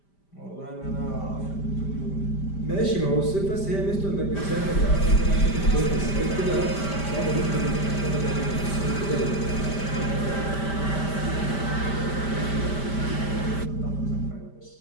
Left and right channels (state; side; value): late; right; 5.1 ms